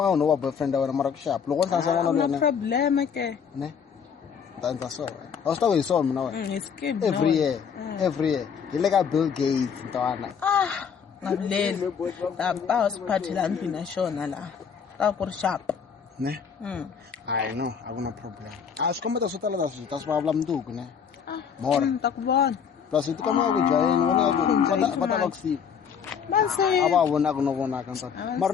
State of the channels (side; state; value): right; quieter; 7.0 dB